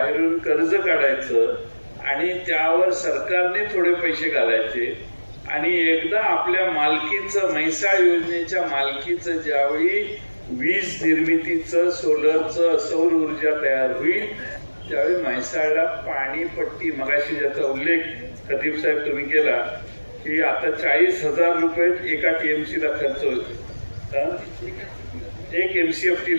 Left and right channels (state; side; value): inverted; both; correlation -1.00